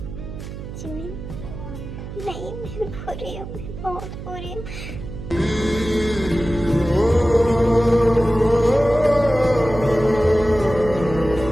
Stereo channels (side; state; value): right; noise; hum, 10 dB below the sound